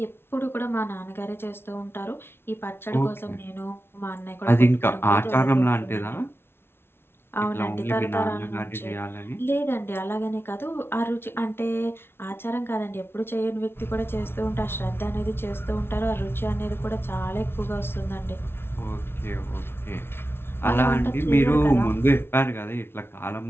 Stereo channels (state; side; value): late; right; 0.11 ms